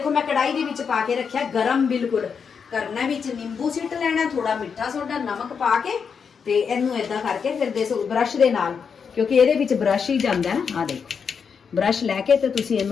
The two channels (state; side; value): quieter; right; 6.3 dB